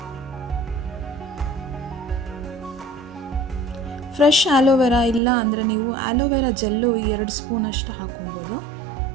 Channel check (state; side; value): drops out; left; at 5.2 s